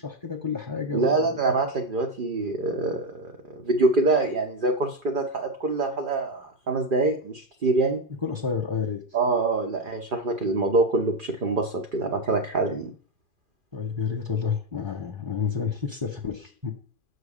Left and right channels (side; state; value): left; late; 2.4 ms